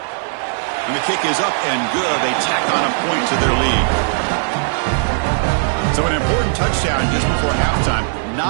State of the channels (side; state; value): left; silent; 67 dB below the other